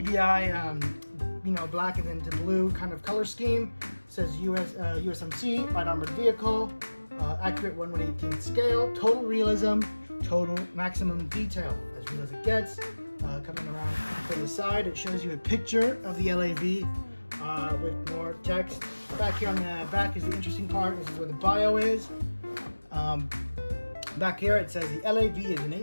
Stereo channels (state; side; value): inverted; both; correlation -1.00